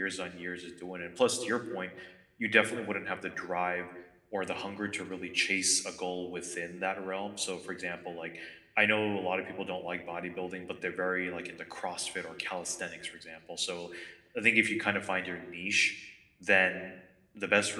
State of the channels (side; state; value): both; identical; correlation 1.00